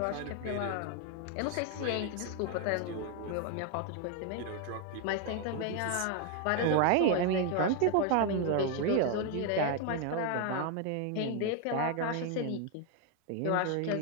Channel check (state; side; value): different; both; correlation 0.01